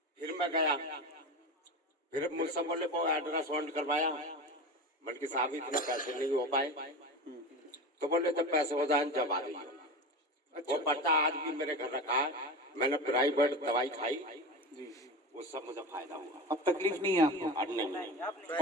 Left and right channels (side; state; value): both; normal; correlation 0.27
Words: फिर मैं गया, फिर मुझसे बोले वो अल्ट्रासाउंड करवाया। मन के साहब इतने पैसे नहीं हो पाए, तो बोले जब पैसे हो जाए जब आ जाइए। वो पर्चा आज भी मेरे घर रखा है, मैंने प्राइवेट दवाई खाई, उससे मुझे फायदा हुआ। अब तकलीफ नहीं है आपको?